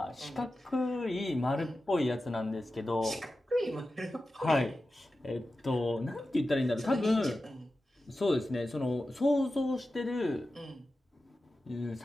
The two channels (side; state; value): both; normal; correlation 0.93